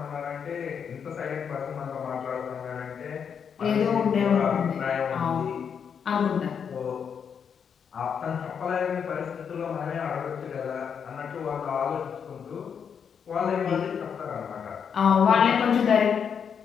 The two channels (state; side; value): quieter; right; 7.2 dB